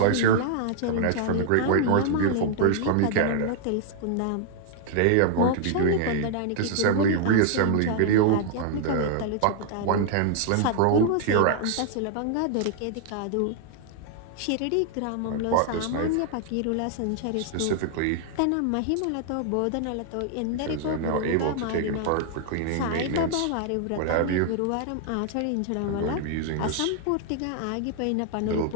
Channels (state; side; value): different; both; correlation 0.00